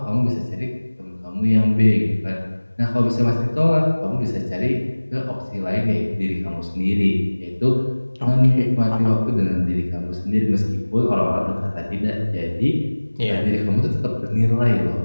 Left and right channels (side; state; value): both; inverted; correlation -1.00